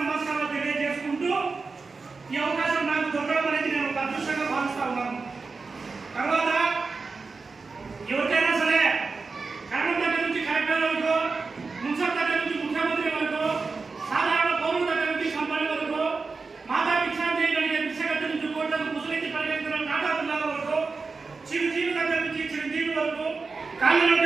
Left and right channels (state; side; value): quieter; left; 4.3 dB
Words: నమస్కారాలు తెలియజేసుకుంటూ ఈ అవకాశం నాకు దొరకడం అనేది నేను ఒక అదృష్టంగా భావిస్తా ఉన్నాను. తర్వాత ఎవరికైనా సరే కరణం దగ్గర నుంచి కలెక్టర్ వరకు, మున్సిపల్ దగ్గర నుంచి ముఖ్యమంత్రి వరకు, సాధారణ పౌరుల దగ్గర నుంచి కంపెనీ వరకు, మాతా భిక్షాంతి కలిగే భిక్షగతి నుంచి కోట్లకు ముసలించి పరిగెత్తున్న నాటాల వరకు, చిరుజీవి దగ్గర నుంచి చిరుజీవి వరకు,